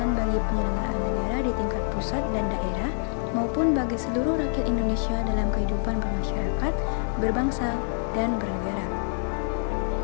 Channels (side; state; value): right; silent; digital silence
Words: bagi penyelenggaraan negara di tingkat pusat dan daerah, maupun bagi seluruh rakyat Indonesia dalam kehidupan bermasyarakat, berbangsa, dan bernegara.